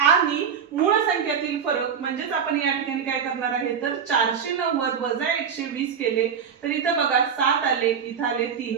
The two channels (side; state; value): left; quieter; 7.3 dB